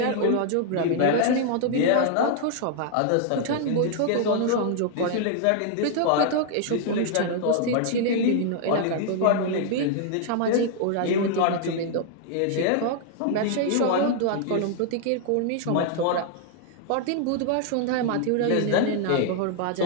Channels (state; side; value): different; both; correlation 0.00